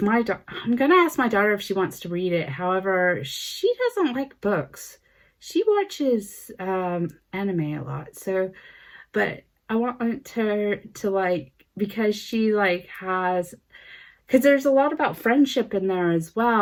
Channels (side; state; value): both; identical; correlation 1.00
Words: going to ask my daughter if she wants to read it. However, she doesn't like books. She watches anime a lot. So, but I want her to like, because she like has, because there's a lot about friendship in there as